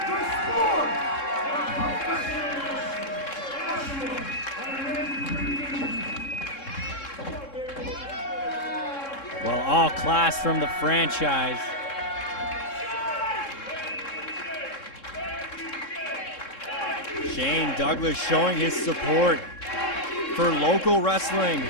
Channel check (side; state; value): right; late; 3.7 ms